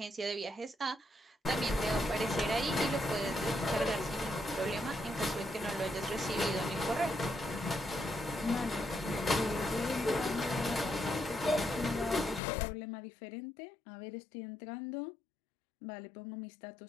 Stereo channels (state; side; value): drops out; right; at 12.4 s